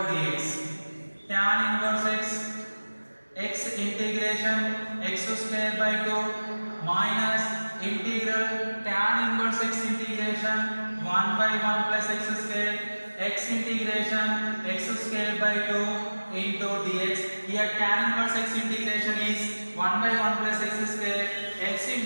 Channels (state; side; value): inverted; both; correlation -1.00